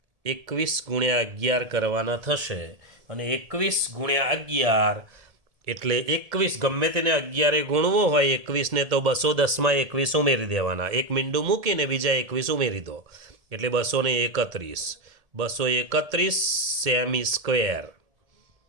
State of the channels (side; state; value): left; late; 1.7 ms